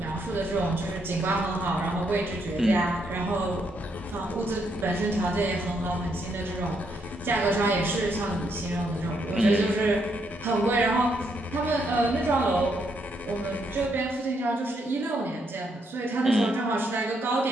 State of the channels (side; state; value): both; normal; correlation 0.76